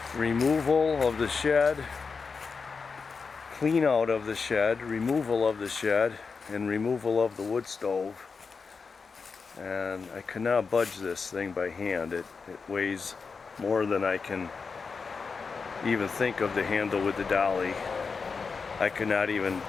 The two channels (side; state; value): right; quieter; 5.0 dB